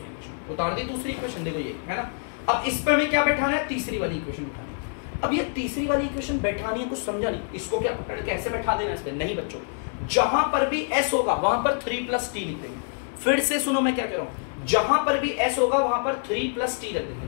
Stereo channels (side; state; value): right; silent; 61 dB below the other